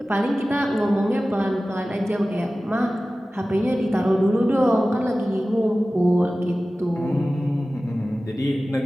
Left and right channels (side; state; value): both; normal; correlation 0.96